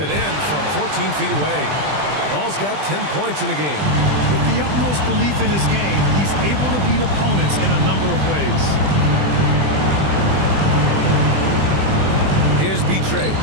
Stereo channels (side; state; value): left; late; 20 ms